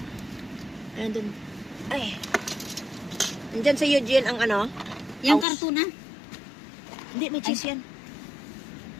Nandun. Ay. Nandyan sa Eugene ang ano? Yung House. karton na. Hindi, may cheese yan.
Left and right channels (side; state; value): right; drops out; at 5.5 s